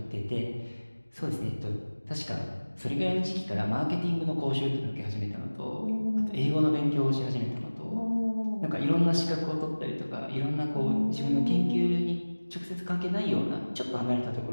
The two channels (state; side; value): inverted; both; correlation -1.00